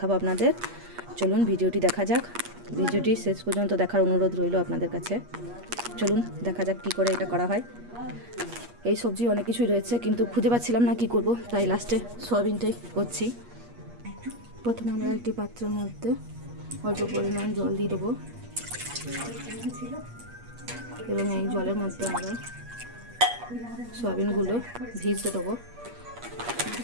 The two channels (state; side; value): late; left; 8.4 ms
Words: আপনাদের। চলুন ভিডিওটি দেখা যাক, ভিডিওটি শেষ পর্যন্ত দেখার অনুরোধ রইল আপনাদের কাছে। চলুন দেখা যাক কী করে এটা করা হয়। এই সবজি অনেক কিছুই রয়েছে, কিন্তু খুঁজে পাচ্ছিলাম না কি করব, তাই লাস্টে সয়াবিনটাই করছি। প্রথমে আমরা একটি পাত্রের মধ্যে অল্প পরিমাণ জল দিয়ে দেবো এবং এই জলের মধ্যে আমরা সয়াবিনগুলো ভিজতে দেবো।